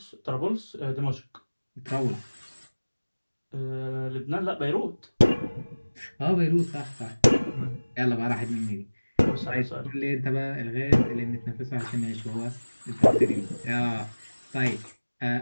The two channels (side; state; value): both; inverted; correlation -1.00